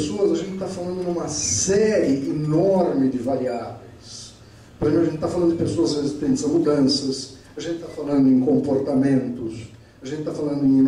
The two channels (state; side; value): identical; both; correlation 1.00